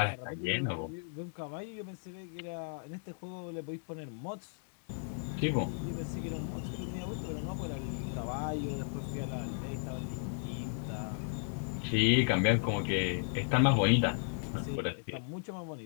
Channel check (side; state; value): right; silent; digital silence